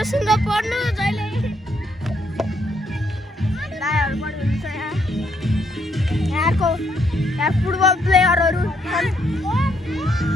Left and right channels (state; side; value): normal; both; correlation 0.74